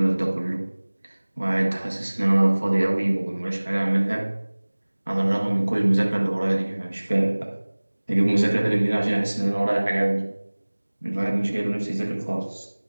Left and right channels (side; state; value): both; inverted; correlation -1.00